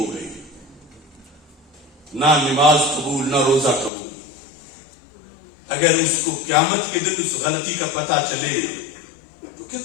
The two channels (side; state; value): right; drops out; at 3.9 s